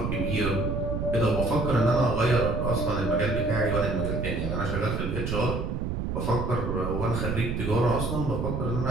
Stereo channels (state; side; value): noise; right; rumble, 2 dB below the sound